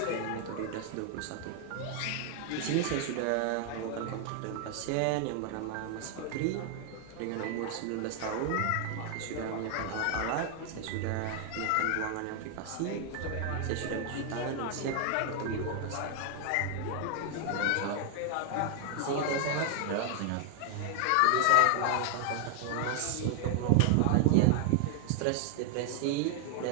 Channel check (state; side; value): different; both; correlation 0.00